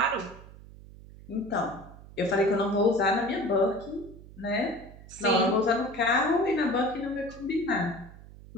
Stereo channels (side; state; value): right; noise; hum, 18 dB below the sound